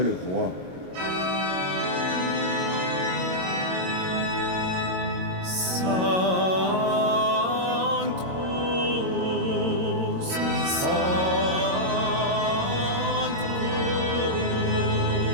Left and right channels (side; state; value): left; late; 22 ms